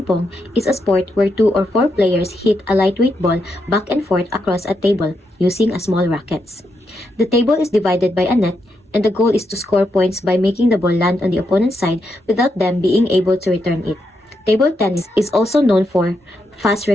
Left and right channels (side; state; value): both; normal; correlation 0.82